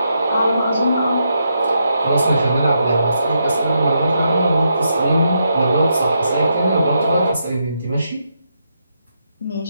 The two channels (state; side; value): inverted; both; correlation -0.81